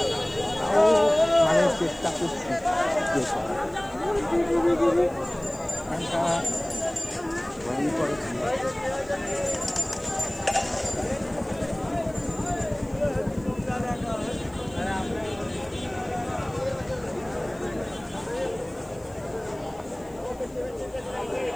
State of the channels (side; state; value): left; noise; hiss, 28 dB below the sound